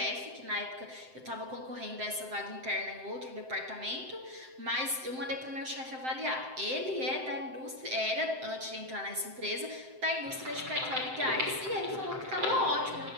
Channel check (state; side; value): late; left; 7.7 ms